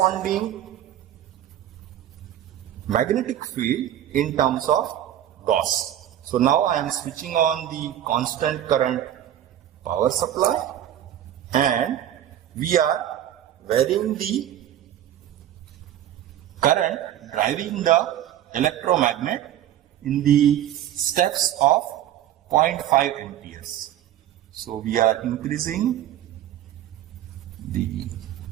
magnetic field in terms of Gauss. So now I am switching on the constant current power supply and we are varying the current driving the electromagnet in the steps of 0.5 amperes. So we are increasing the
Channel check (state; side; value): quieter; left; 11.6 dB